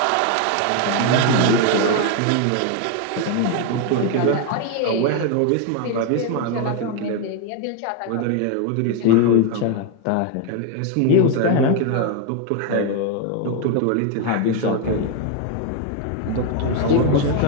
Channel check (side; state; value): both; different; correlation 0.01